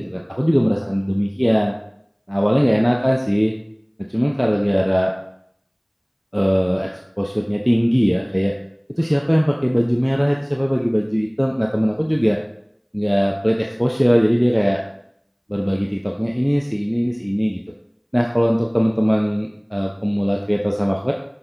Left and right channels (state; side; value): identical; both; correlation 1.00